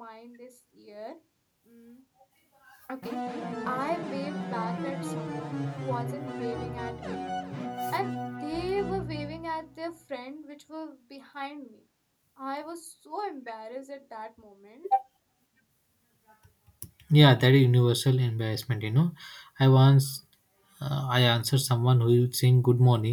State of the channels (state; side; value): identical; both; correlation 1.00